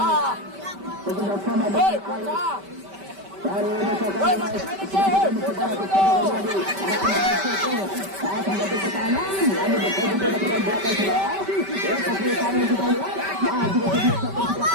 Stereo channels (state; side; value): late; left; 5.1 ms